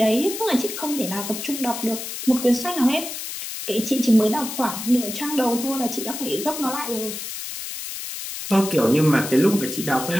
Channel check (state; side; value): noise; left; hiss, 7 dB below the sound